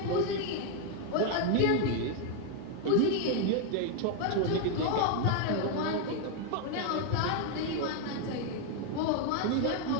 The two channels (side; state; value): both; different; correlation 0.01